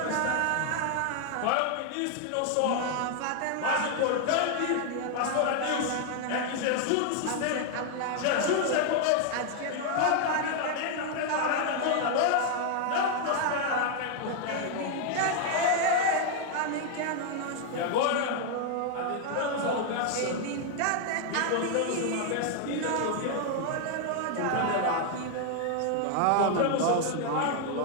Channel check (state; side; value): different; both; correlation 0.00